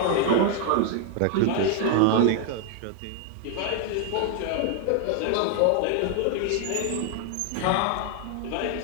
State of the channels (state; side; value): different; both; correlation 0.00